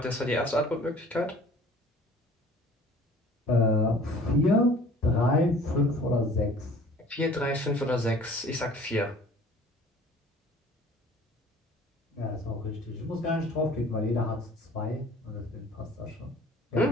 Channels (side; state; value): both; normal; correlation 0.50